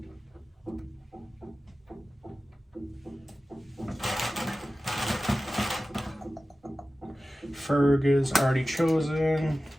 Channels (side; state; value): both; normal; correlation 0.95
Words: Ferg is already chosen.